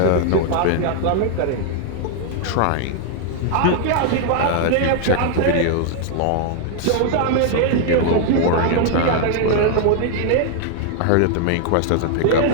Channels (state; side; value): different; both; correlation 0.00